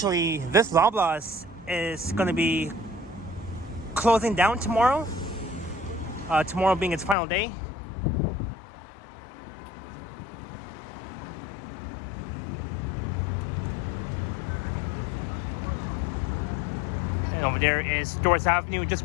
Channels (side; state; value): right; drops out; at 7.2 s